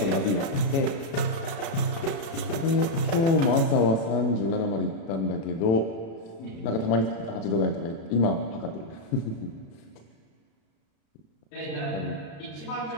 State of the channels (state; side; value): late; right; 35 ms